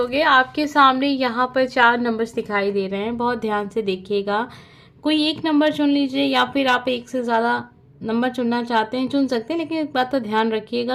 आपके सामने यहाँ पर 4 नंबर्स दिखाई दे रहे हैं, बहुत ध्यान से देखिएगा। कोई एक नंबर चुन लीजिए या फिर आप एक से ज़्यादा नंबर चुनना चाहते हैं चुन सकते हैं, लेकिन एक बात का ध्यान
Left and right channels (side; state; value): both; identical; correlation 1.00